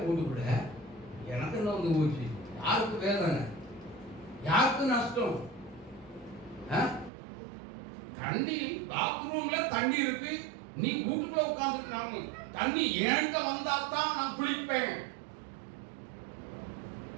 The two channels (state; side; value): drops out; left; at 7.1 s